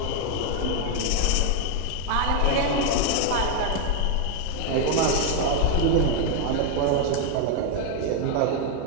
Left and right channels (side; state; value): both; different; correlation 0.01